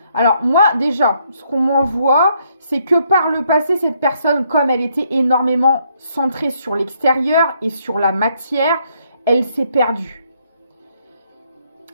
Alors moi déjà, ce qu'on m'envoie, c'est que par le passé, cette personne, comme elle était énormément centrée sur l'extérieur et sur la matière, elle s'est perdue.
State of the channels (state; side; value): inverted; both; correlation -0.71